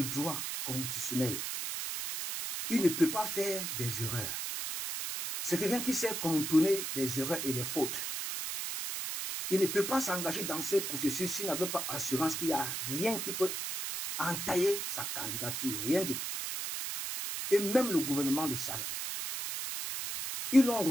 droit constitutionnel. Il ne peut pas faire des erreurs. C'est quelqu'un qui sait contourner les erreurs et les fautes. Il ne peut pas s'engager dans ce processus s'il n'avait pas assurance qu'il n'y a rien qui peut entailler sa candidature. Rien du tout. Et même le gouvernement le savait. Ils ont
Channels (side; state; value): right; noise; hiss, 3 dB below the sound